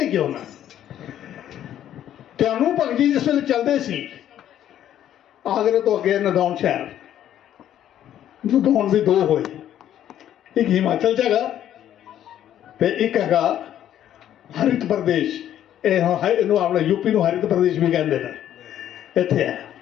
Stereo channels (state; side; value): quieter; right; 11.1 dB